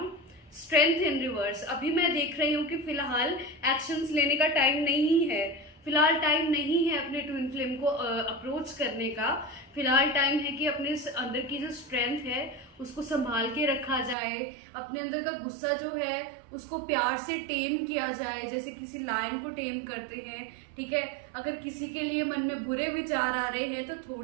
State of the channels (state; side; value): drops out; left; at 14.2 s